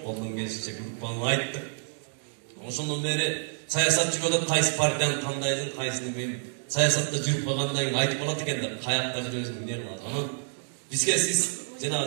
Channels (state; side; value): silent; left; 59 dB below the other